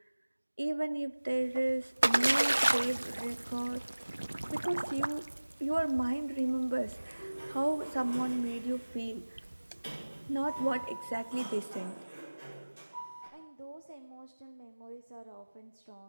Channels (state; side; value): inverted; both; correlation -1.00